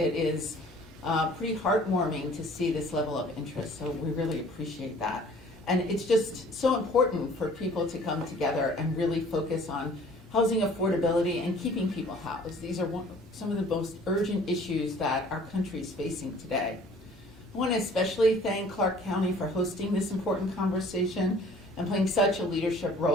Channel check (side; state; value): both; normal; correlation 0.52